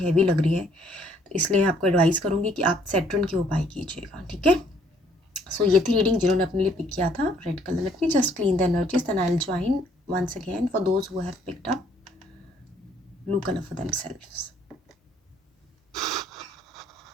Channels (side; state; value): both; normal; correlation 0.64